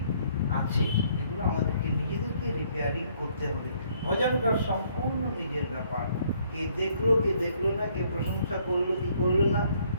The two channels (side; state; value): both; inverted; correlation -0.65